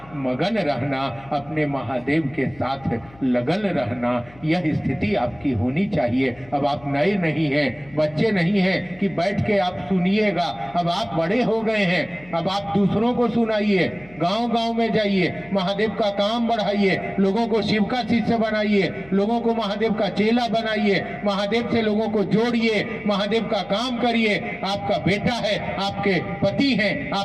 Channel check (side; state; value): left; noise; hum, 24 dB below the sound